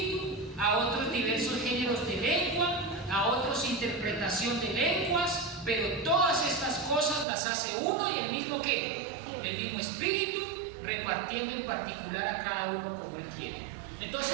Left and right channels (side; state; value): left; drops out; at 7.2 s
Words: a otros diversos géneros de lengua, a otros interpretación de lenguas, pero todas estas cosas las hace uno y el mismo ¿qué? El mismo Espíritu, repartiendo en particular a cada uno como Él quiere.